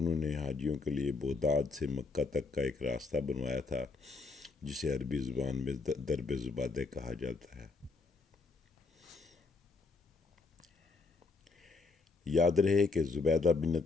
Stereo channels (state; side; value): quieter; right; 4.0 dB